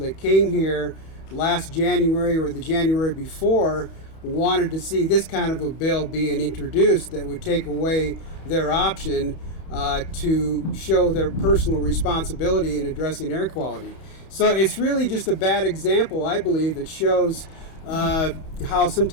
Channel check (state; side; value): late; right; 31 ms